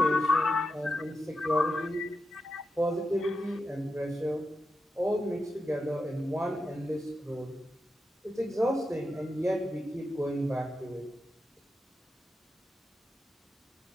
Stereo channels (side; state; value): both; normal; correlation 0.88